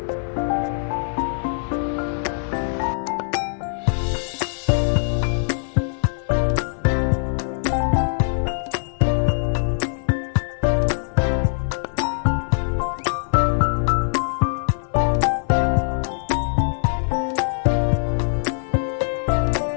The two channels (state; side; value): silent; right; 57 dB below the other